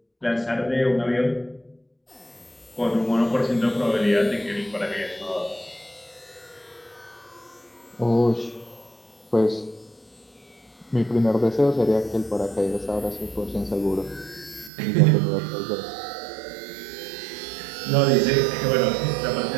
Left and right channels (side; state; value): left; drops out; at 14.7 s